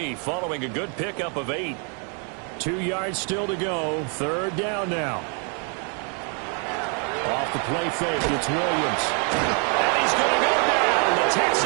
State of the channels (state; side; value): quieter; left; 38.6 dB